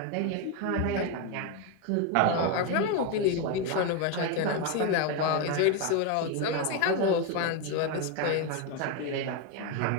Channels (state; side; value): different; both; correlation 0.02